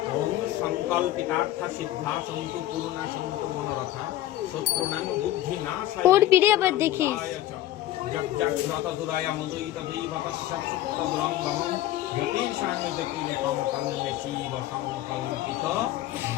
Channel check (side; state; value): right; quieter; 14.3 dB